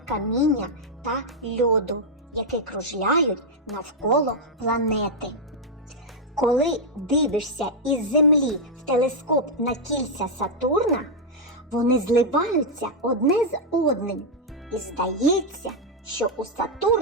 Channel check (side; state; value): both; normal; correlation -0.03